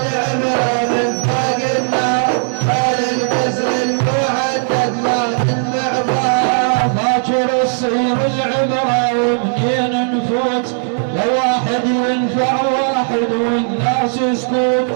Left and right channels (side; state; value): left; silent; digital silence